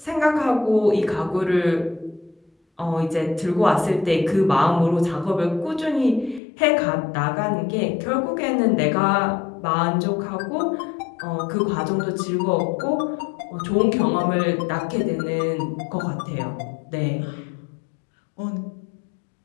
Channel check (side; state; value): right; drops out; at 6.4 s